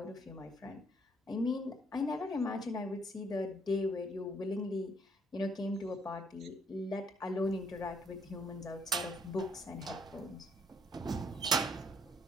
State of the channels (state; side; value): normal; both; correlation 0.67